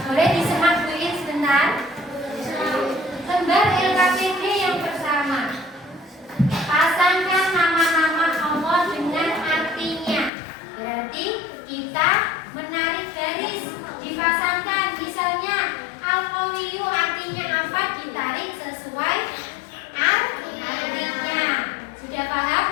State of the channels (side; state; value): right; drops out; at 10.3 s